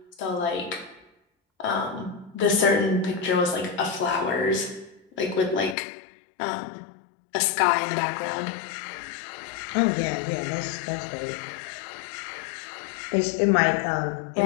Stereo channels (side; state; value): right; drops out; at 5.8 s